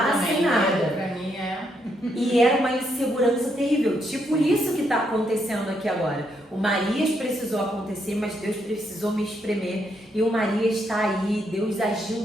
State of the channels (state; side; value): normal; both; correlation 0.76